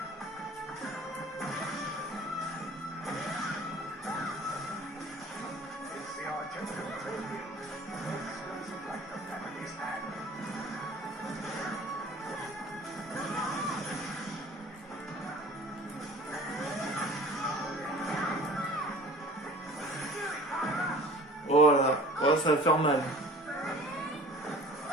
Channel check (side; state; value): both; normal; correlation 0.45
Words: Oh là, oh, ça va faire mal. Ça